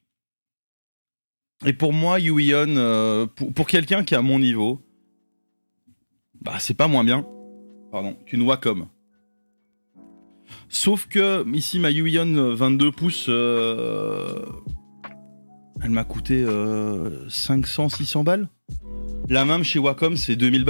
Et pour moi, Huion, pour quelqu'un qui est à mon niveau, bah c'est pas moins bien, pardon, qu'une Wacom. Sauf que ici ma Huion 22 pouces, elle m'a coûté 500-600 balles. La même chez Wacom c'est 2000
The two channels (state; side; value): inverted; both; correlation -1.00